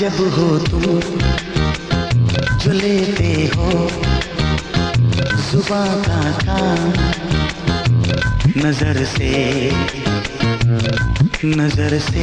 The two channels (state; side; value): identical; both; correlation 1.00